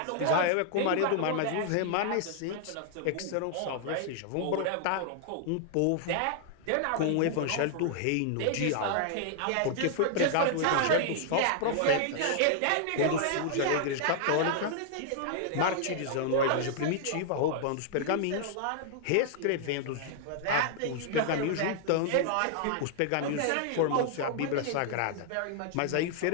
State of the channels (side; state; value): both; different; correlation -0.01